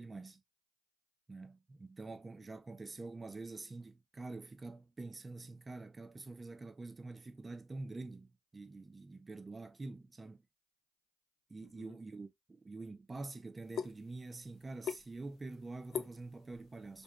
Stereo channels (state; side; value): normal; both; correlation 0.88